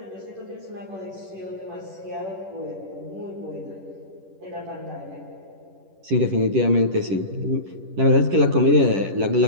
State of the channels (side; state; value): left; late; 10 ms